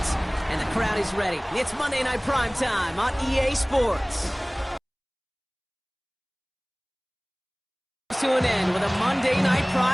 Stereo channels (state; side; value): identical; both; correlation 1.00